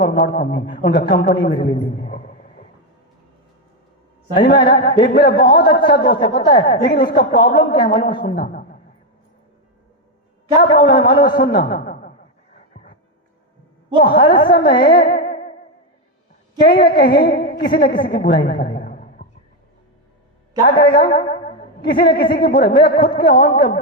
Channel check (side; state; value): both; normal; correlation 0.06